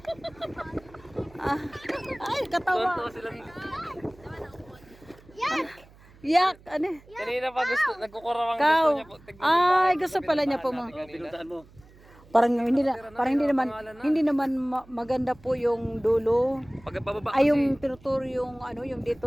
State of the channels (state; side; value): noise; right; hum, 25 dB below the sound